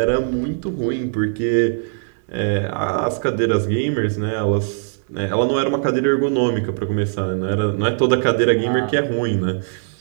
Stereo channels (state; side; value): silent; left; 66 dB below the other